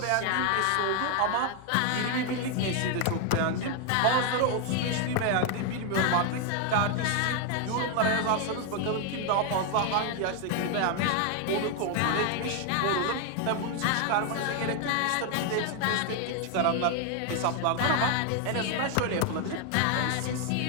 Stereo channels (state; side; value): different; both; correlation 0.01